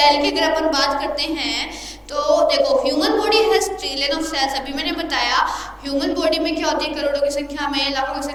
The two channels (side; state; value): both; identical; correlation 1.00